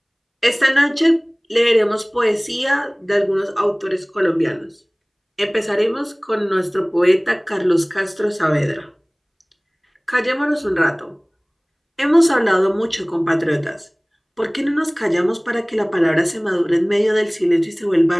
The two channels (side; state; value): both; identical; correlation 1.00